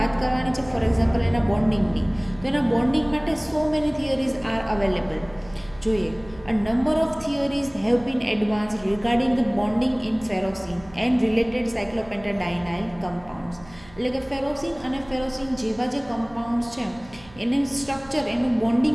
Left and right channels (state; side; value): noise; right; hum, 23 dB below the sound